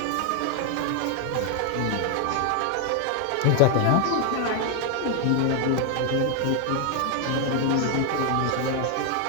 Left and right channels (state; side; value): different; both; correlation 0.00